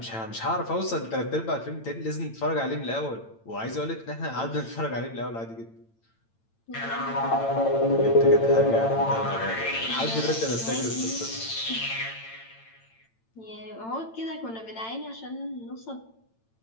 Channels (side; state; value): right; late; 8.9 ms